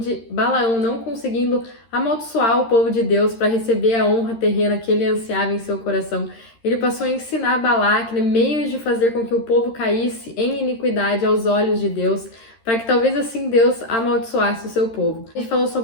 Balaão, não conseguindo amaldiçoar o povo de Deus para receber a honra terrena que ele ansiava em seu coração, ele passou a ensinar Balaque, né, meios de fazer com que o povo caísse em iniquidade aos olhos de Deus, para que talvez assim Deus amaldiçoasse o seu povo. A gente falou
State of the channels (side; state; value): right; late; 13 ms